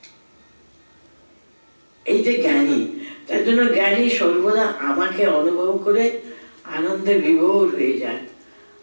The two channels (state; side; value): inverted; both; correlation -1.00